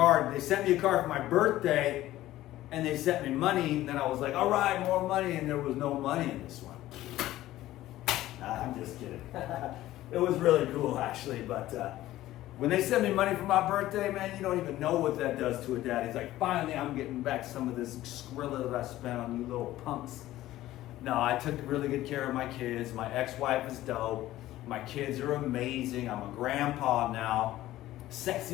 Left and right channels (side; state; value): right; quieter; 15.1 dB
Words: They sent me a card for my birthday, and they sent me money. And then I was like, all right, more money. And there was no money in this one. I'm just kidding. It was really cool, actually. But when they sent me money for my birthday, man, you don't even know what that does to a dad. He's like, finally, I'm getting back some of this Skrilla that I spent on you little punks. No, I took really good care of my kids. My ex-wife is dope. My kids are amazing. I'm a grandpa now.